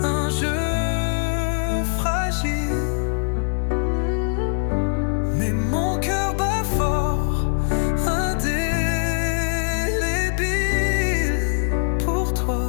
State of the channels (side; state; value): right; silent; 64 dB below the other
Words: un jeu fragile. Mais mon cœur bat fort, indélébile pour